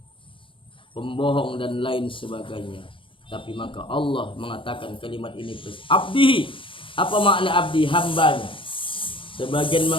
pembohong dan lain sebagainya. Tapi maka Allah mengatakan kalimat ini abdihi. Apa makna abdi? Hambanya. Sebagian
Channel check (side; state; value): right; late; 0.25 ms